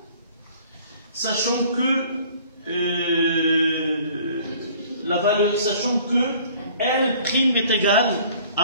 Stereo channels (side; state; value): both; inverted; correlation -0.53